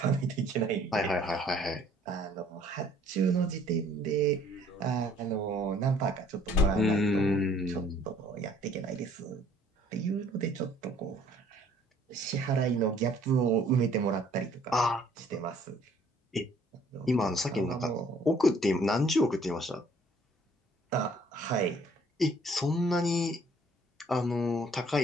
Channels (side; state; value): both; normal; correlation 0.59